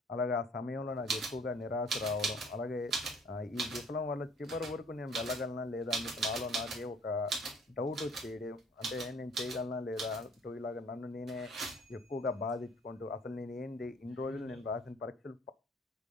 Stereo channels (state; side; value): normal; both; correlation 0.55